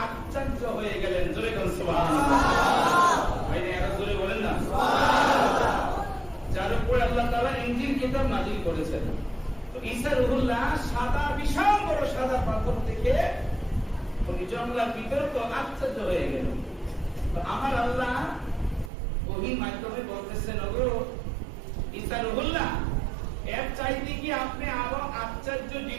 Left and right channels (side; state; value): left; drops out; at 18.9 s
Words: আশ্চর্য হয়ে গেলেন। জোরে বলুন সুবহানাল্লাহ। ভাইরা এরা জোরে বলেন না সুবহানাল্লাহ। যার উপর আল্লাহ তাআলা ইনজিল কিতাব নাযিল করেছেন। তো ঈসা রূহুল্লাহ সাদা বিশাল বড় সাদা পাথর দেখে উনি জঙ্গলের ভিতরে তো আশ্চর্য হয়ে গেল। তো আমার আল্লাহ ওহী মাধ্যমে বলতেছেন, ওগো ঈসা রূহুল্লাহ, এর চাইতে কি আপনি আরো আশ্চর্য